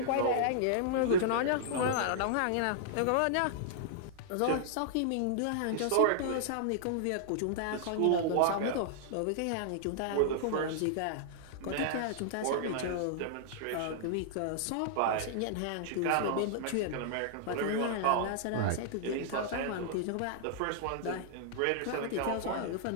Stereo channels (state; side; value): different; both; correlation -0.01